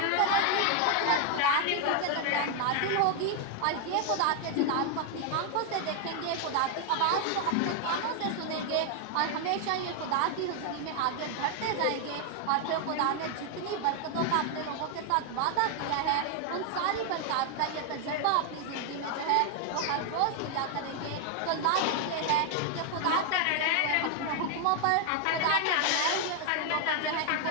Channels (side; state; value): both; different; correlation 0.00